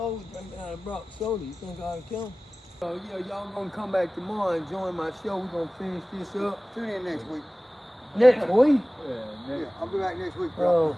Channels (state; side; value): normal; both; correlation 0.98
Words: drinking out of Brock soda. You think I ought to kill him? Oh yeah, y'all gonna come back tomorrow and join my show. We're gonna finish this up. Tune in next week. Next week? Yeah, I'll be back next week, bro.